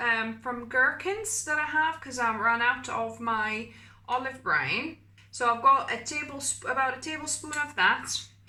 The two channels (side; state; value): both; identical; correlation 1.00